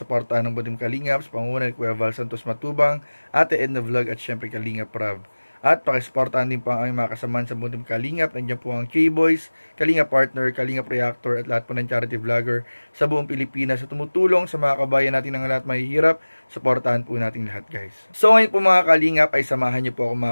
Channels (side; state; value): both; inverted; correlation -1.00